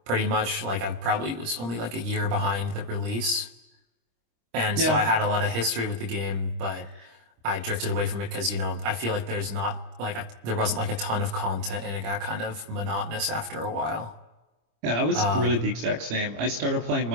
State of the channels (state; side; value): late; left; 26 ms